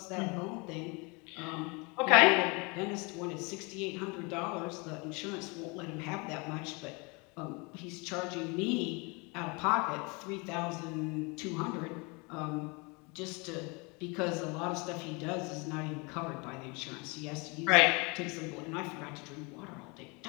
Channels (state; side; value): quieter; right; 29.3 dB